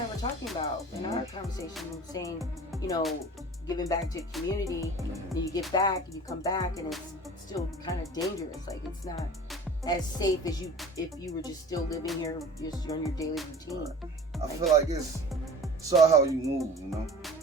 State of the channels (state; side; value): normal; both; correlation 0.41